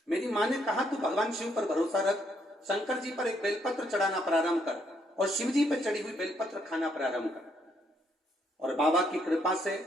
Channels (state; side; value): normal; both; correlation 0.72